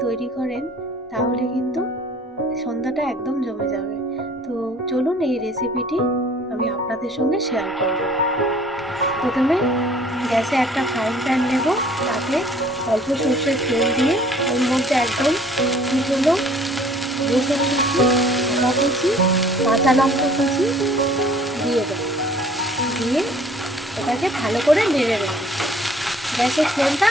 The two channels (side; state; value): both; normal; correlation 0.54